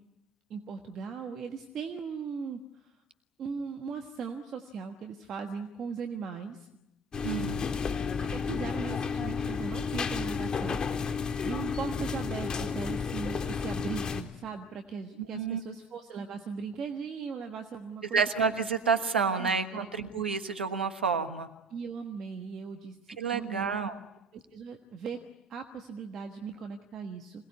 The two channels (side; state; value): both; normal; correlation 0.46